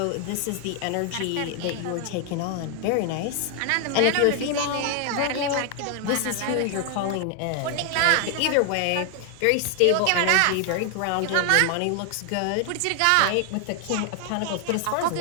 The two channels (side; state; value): both; different; correlation 0.00